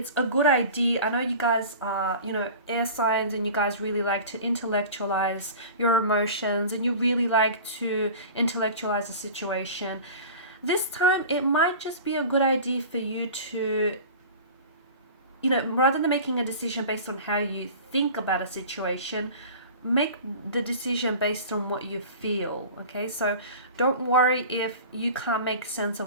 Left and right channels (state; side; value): inverted; both; correlation -0.38